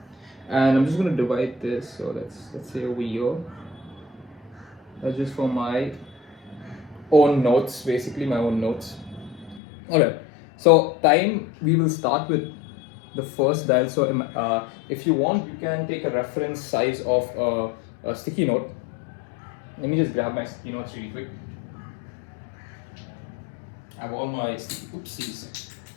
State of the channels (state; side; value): drops out; right; at 9.6 s